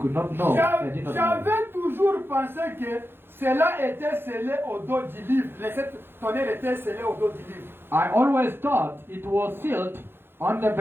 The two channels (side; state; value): left; late; 0.10 ms